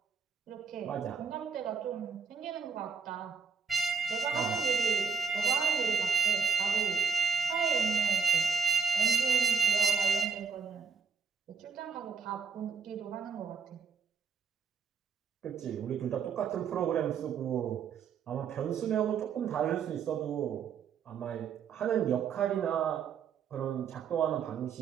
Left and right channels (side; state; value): left; quieter; 6.1 dB